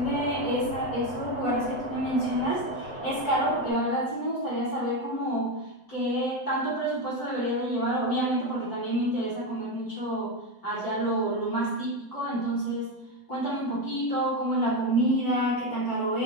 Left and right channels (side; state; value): right; late; 7.9 ms